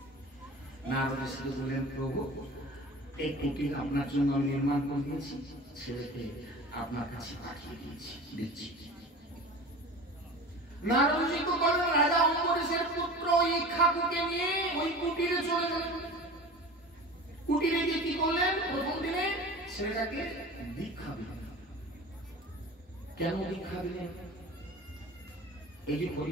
নারদ ঋষিকে বললেন, প্রভু এই কুটির আপনার জন্য আমি নির্মাণ করে দিয়েছি, ছেলেকে আপনার কাছে পাঠিয়ে দিচ্ছি। নারদ ঋষি তো বলেন, রাজা অম্বরীশের পুত্র ইক্ষ্বাকুকে নিয়ে ওই কুটিরে চলে গেলেন। কুটিরে গিয়ে কি করলেন? প্রথম দিনে ছেলেটাকে দীক্ষা দিলেন। কেন দীক্ষা দিলেন? এই যে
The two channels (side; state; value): both; normal; correlation 0.36